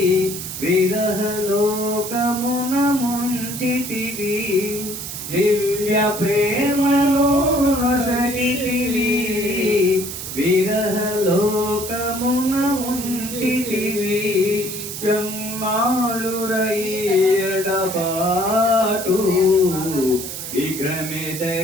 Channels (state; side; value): noise; right; hiss, 7 dB below the sound